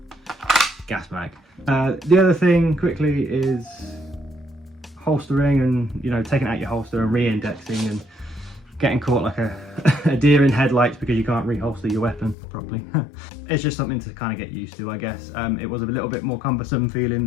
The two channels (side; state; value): right; drops out; at 12.4 s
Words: gas mag. The other thing quickly is holstering, and you know, taking out your holster and re-indexing and getting caught like a deer in headlights because you can't reholster your weapon properly. It's just something to kind of get used to, I guess. It was a little bit more cumbersome feeling